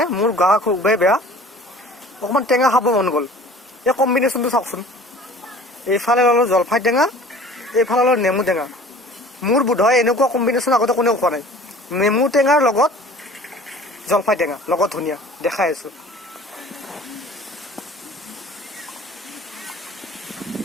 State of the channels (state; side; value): normal; both; correlation 0.46